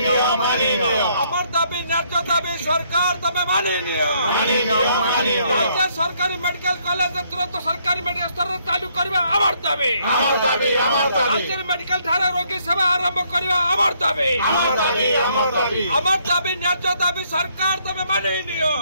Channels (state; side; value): inverted; both; correlation -0.69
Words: आमर दाबी न्याय दाबी सरकार तमे मानि नियो राज्य सरकारी मेडिकल कॉलेज तुरंत सरकारी मेडिकल स्तर चालू करवा आमर दाबी राज्य मेडिकल थाना रोगी सेवा आरंभ करवा आमर दाबी न्याय दाबी सरकार तमे मानि नियो